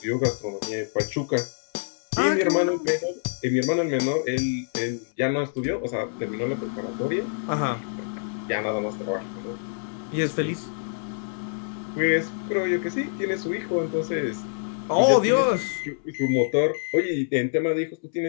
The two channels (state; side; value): silent; right; 61 dB below the other